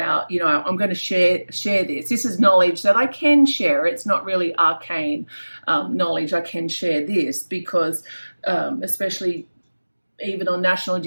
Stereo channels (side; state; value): both; inverted; correlation -1.00